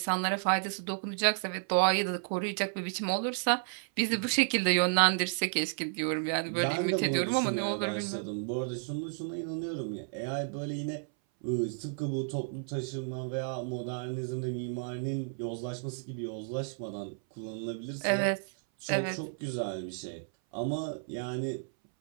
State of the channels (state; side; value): silent; left; 56 dB below the other